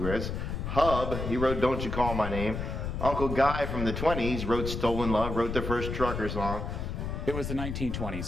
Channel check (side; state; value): left; noise; rumble, 4 dB below the sound